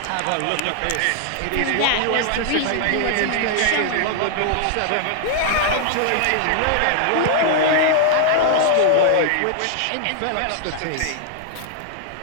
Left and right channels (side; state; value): both; different; correlation 0.00